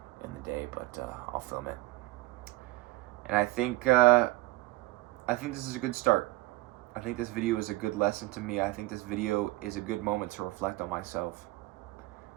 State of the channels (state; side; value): quieter; left; 19.4 dB